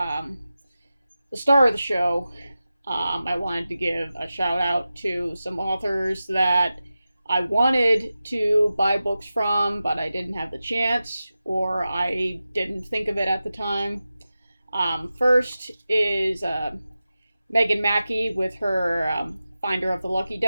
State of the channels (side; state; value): both; inverted; correlation -0.93